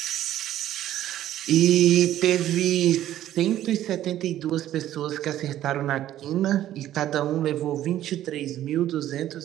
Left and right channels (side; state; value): left; quieter; 12.7 dB